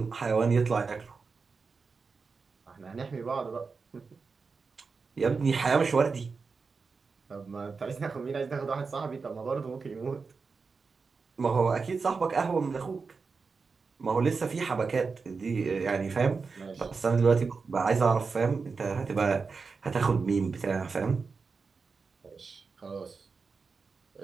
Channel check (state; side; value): quieter; left; 4.8 dB